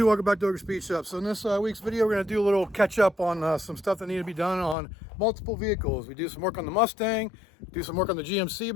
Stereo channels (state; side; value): drops out; right; at 4.8 s